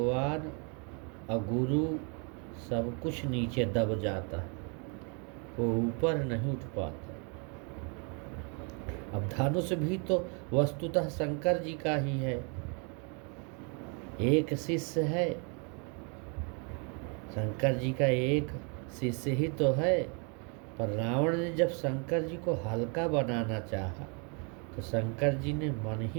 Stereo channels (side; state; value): left; quieter; 36.2 dB